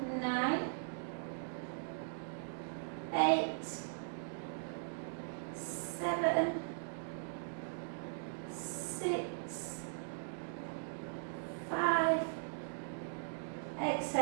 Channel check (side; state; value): left; silent; digital silence